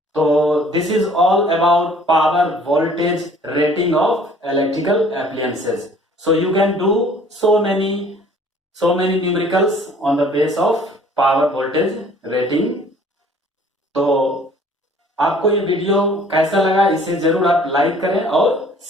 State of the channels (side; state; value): both; normal; correlation 0.54